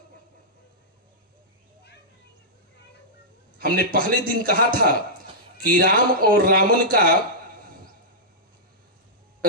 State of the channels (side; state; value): both; normal; correlation -0.12